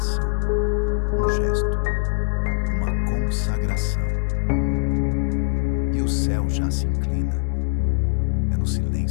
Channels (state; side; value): silent; right; digital silence